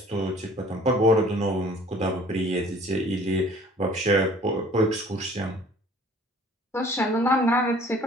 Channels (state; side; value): normal; both; correlation 0.52